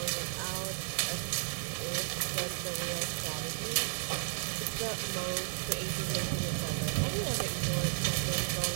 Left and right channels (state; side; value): silent; left; 55 dB below the other